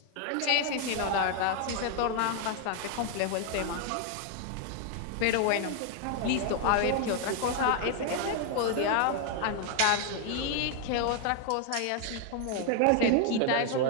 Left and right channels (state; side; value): different; both; correlation 0.00